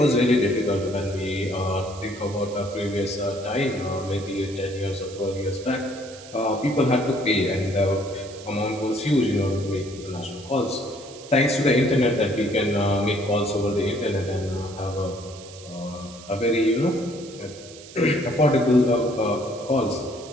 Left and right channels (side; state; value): right; noise; hiss, 18 dB below the sound